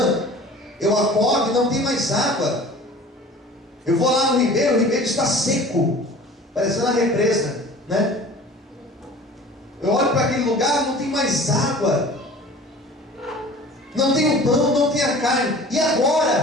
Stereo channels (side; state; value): both; normal; correlation 0.43